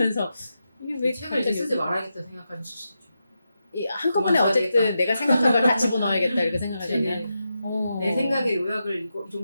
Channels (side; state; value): both; inverted; correlation -0.87